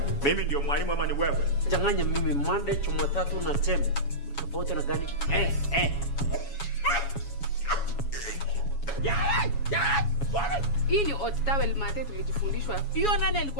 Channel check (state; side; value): late; right; 7.2 ms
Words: Mimi ndio mwalimu ama ni wewe? Changanya mimi Monday, Jumatatu na Tembe. Tofauti na gani? Hii ni hot towel mate tulijifundishwa. Hiyo nani